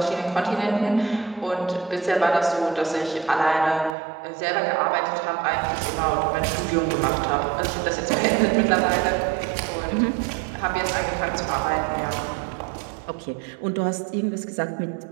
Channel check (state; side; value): drops out; left; at 4.0 s